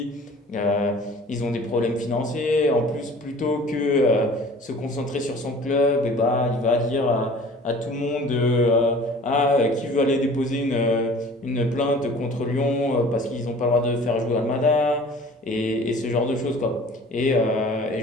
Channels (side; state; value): both; normal; correlation 0.46